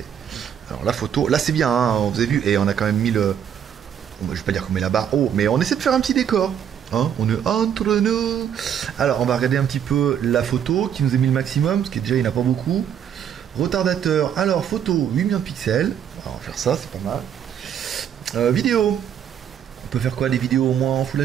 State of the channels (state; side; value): quieter; left; 9.0 dB